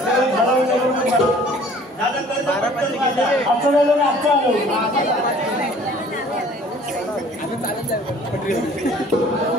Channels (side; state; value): both; normal; correlation 0.52